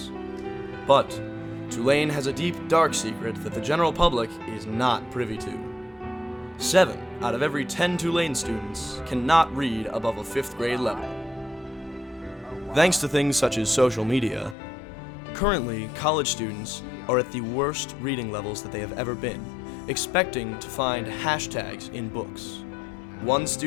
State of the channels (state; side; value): drops out; right; at 14.6 s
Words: But Tulane has a deep, dark secret that the general public is not privy to. 7 out of every 10 Tulane students cannot read above a 5th grade level. Thanks to things such as social media, currently college students are at the worst reading levels that they have ever been, expecting to find hashtags in books. One